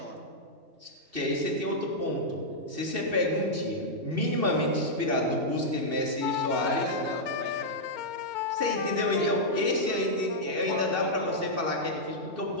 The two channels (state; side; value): late; left; 2.6 ms